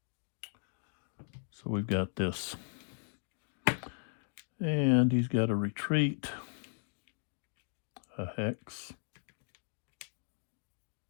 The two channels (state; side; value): silent; right; digital silence